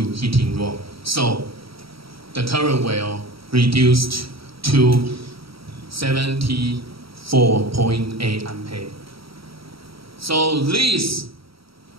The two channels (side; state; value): left; late; 0.75 ms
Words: room. So the current will reduce to 74.8 ampere. So this